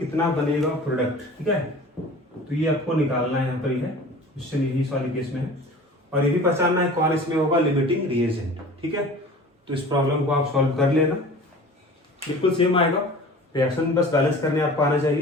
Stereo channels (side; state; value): both; normal; correlation 0.41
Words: बनेगा प्रोडक्ट, ठीक है। तो ये आपको निकालना है, यहाँ पर ही है क्वेश्चन, यही इस वाले केस में है। और ये भी पहचानना है कौन इसमें होगा लिमिटिंग रिएजेंट, ठीक है। तो इस प्रॉब्लम को आप सॉल्व कर लेना, बिल्कुल सेम आएगा। रिएक्शन बस बैलेंस करने आपको आना